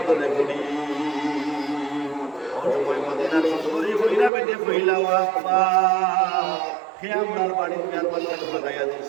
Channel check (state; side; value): drops out; left; at 4.3 s